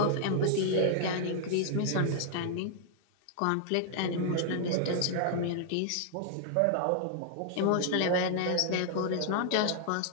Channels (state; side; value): different; both; correlation 0.00